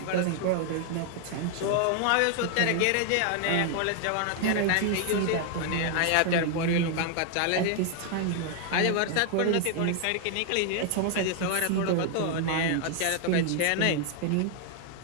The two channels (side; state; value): both; different; correlation 0.00